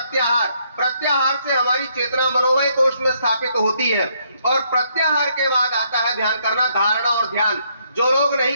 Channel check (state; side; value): inverted; both; correlation -0.71